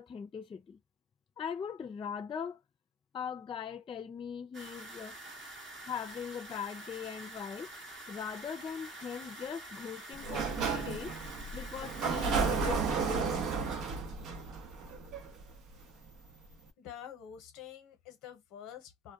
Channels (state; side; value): normal; both; correlation 0.43